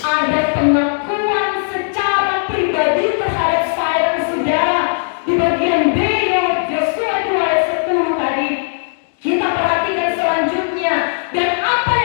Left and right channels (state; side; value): silent; right; digital silence